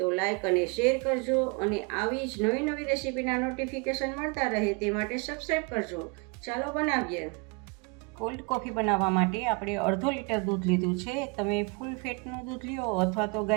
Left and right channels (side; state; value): left; quieter; 31.7 dB